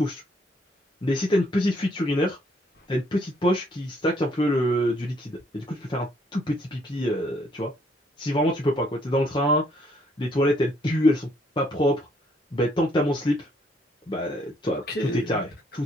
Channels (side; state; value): both; normal; correlation 0.67